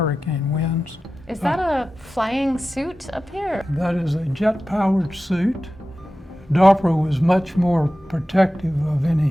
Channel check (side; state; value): both; normal; correlation 0.94